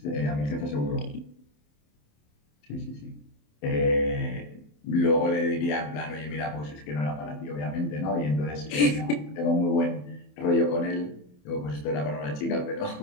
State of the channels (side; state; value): right; late; 27 ms